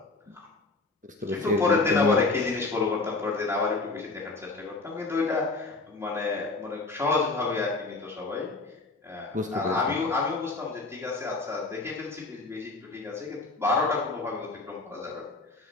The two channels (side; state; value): right; quieter; 3.5 dB